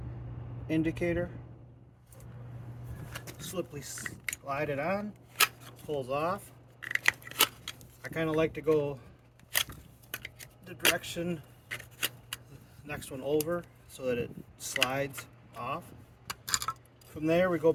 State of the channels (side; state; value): both; identical; correlation 1.00